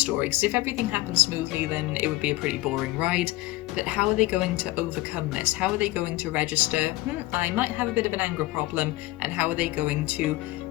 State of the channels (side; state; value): right; quieter; 18.6 dB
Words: because if everything happens smoothly then it would be a pretty boring ride. But how are they going to overcome this? How are they going to register, I might have a bit of an anger problem, and how are they going to